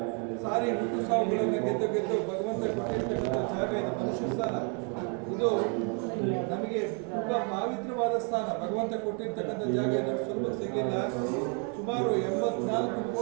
ಸಾರಿ ಹುಟ್ಟು ಸಾವುಗಳನ್ನು ಗೆದ್ದು ಭಗವಂತ ಕೊಟ್ಟಿರ್ತಕ್ಕಂಥ ಜಾಗ ಇದು. ಮನುಷ್ಯ ಸ್ಥಾನ ಇದು ನಮಗೆ ತುಂಬಾ ಪವಿತ್ರವಾದ ಸ್ಥಾನ. ಭಗವಂತ ಕೊಟ್ಟಿರ್ತಕ್ಕಂಥ ಜಾಗ ಇದು ಸುಲಭ ಸಿಗಲಿಲ್ಲ. ಸುಮಾರು 84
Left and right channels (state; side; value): quieter; left; 37.8 dB